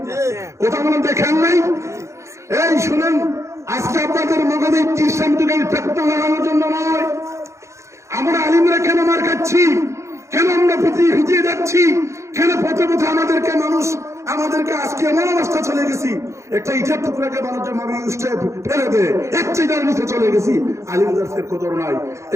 কথা বলেন, দেখেন নাই? এই শুনেন, আজকে আপনাদের মগজে ইসলাম যুগের ফেতনা লাগানোর জন্য নয়। আমরা আলিমরা কেন মার খাচ্ছি? আমরা ভিজিয়ে যাচ্ছি, কেন পথে পথে আমাদেরকে আজকে এমন অবস্থা চলে গেছি, একটা ইটার টুকরাকে মানুষের মামি উষ্টায় ফেলে দেয়, একটাই যার নিচে চলে গেছি, আলিমদার্সের কদর নাই।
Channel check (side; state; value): left; late; 0.14 ms